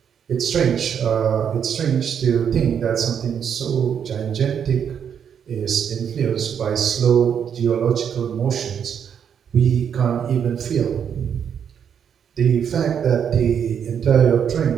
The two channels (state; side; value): quieter; left; 8.0 dB